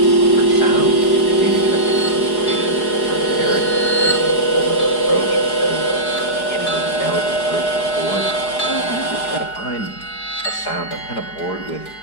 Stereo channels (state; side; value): late; right; 4.8 ms